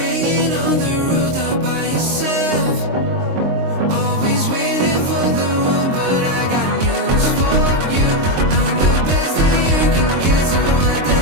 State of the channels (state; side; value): late; left; 23 ms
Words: on the rooftop by yourself? Always waiting for the one, but I got news for you. I'm the best that you can get, so what the